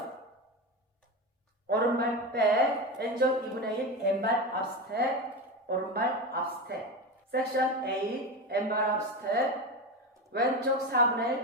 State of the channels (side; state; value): both; normal; correlation 0.20